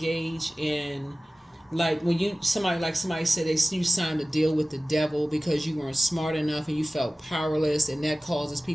in, like when somebody said you signed a deal with the devil because you weren't smart enough and you felt powerless, and that causes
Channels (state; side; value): normal; both; correlation 0.97